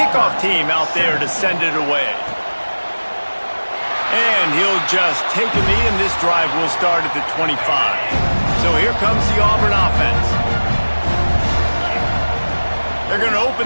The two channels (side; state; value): both; inverted; correlation -1.00